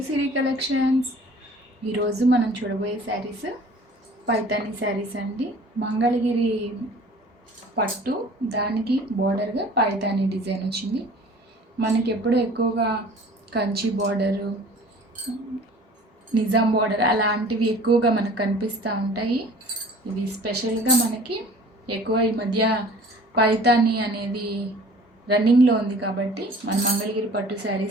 Siri collections. ఈరోజు మనం చూడబోయే శారీస్ పైతాని శారీస్ అండి. మంగళగిరి పట్టు, దానికి బోర్డర్గా పైతాని డిజైన్ వచ్చింది. మనకి ఎప్పుడు ఎక్కువగా కంచి బోర్డరు, నిజాం బోర్డర్ అలాంటివి ఎక్కువగా మనకు కనిపిస్తూ ఉంటాయి. ఇవి స్పెషల్గా మనకి ఎక్కువ ఈ మధ్య పైతాని అనేది రన్నింగ్లో ఉంది కాబట్టి మన మంగళగిరి పట్టు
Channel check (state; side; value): normal; both; correlation 0.48